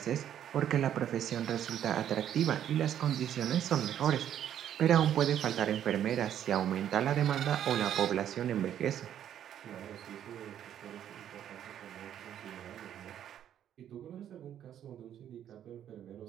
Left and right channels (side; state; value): left; quieter; 10.3 dB